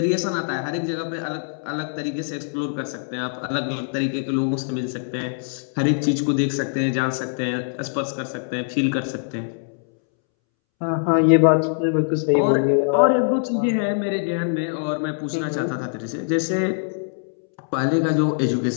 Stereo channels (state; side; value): silent; right; 63 dB below the other